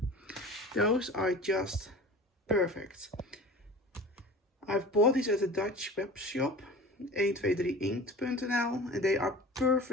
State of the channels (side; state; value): both; normal; correlation 0.39